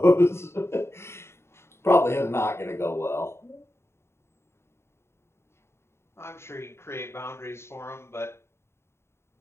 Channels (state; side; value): late; right; 0.12 ms